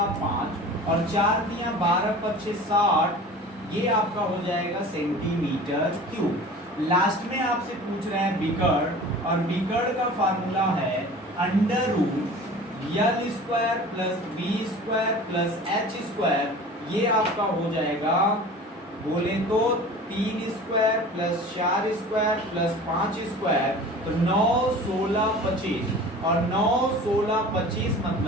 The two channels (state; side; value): normal; both; correlation 0.40